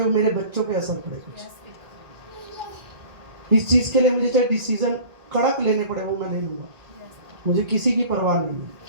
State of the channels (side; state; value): left; late; 1.8 ms